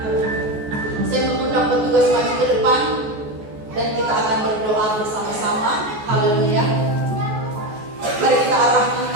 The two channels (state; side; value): late; left; 14 ms